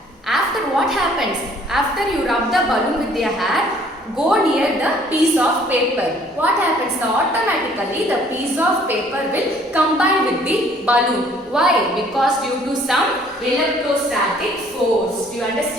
After what happens? After you rub the balloon with your hair, go near the piece of paper. What happens? Automatically the piece of paper will combine with the balloon. Why? Because due to some electrostatic force. Do you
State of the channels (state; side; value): normal; both; correlation 0.58